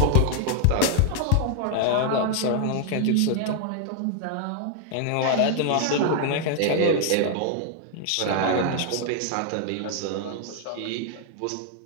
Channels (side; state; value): both; different; correlation 0.00